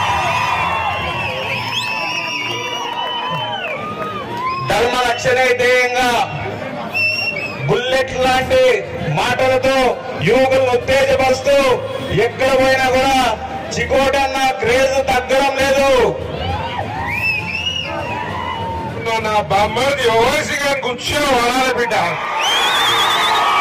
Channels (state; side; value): identical; both; correlation 1.00